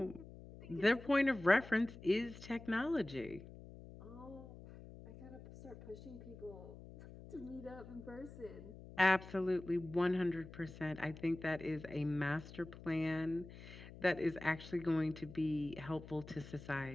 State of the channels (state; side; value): noise; left; hum, 15 dB below the sound